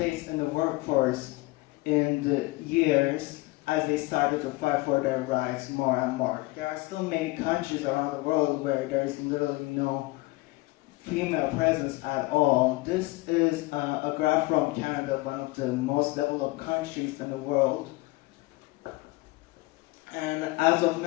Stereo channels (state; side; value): quieter; right; 22.0 dB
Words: in the workforce in the years as they started to fight for their rights more and more. There are still many countries around the world where there's literally no female presence at all. This is a graph from Canada, one of the most developed countries in the world. And as of